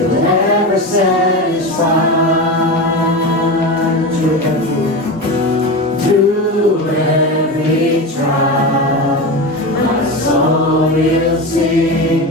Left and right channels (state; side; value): normal; both; correlation 0.22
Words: ever will sing,